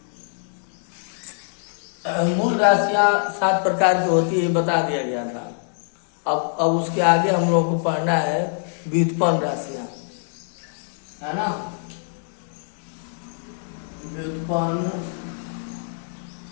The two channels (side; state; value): right; silent; 63 dB below the other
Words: मूल राशियां 7 प्रकार की होती है, बता दिया गया था। अब उसके आगे हम लोगों को पढ़ना है व्युत्पन्न राशियां, है ना। व्युत्पन्न